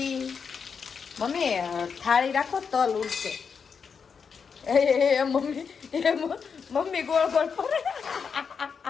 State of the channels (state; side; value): quieter; right; 6.1 dB